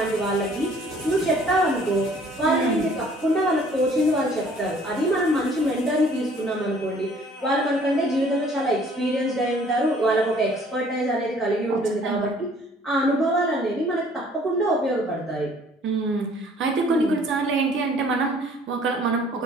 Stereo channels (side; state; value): both; normal; correlation 0.57